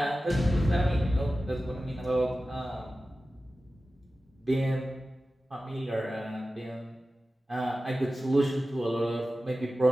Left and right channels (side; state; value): both; normal; correlation 0.94